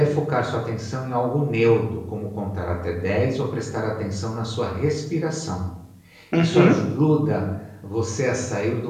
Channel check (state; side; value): identical; both; correlation 1.00